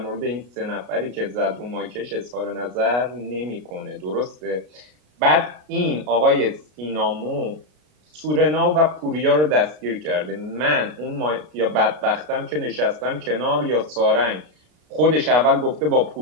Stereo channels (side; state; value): left; late; 33 ms